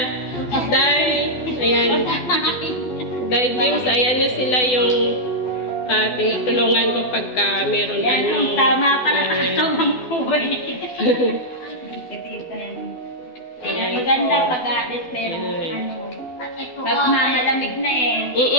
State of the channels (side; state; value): right; late; 12 ms